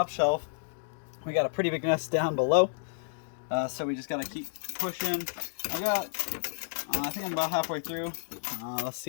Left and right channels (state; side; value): silent; right; digital silence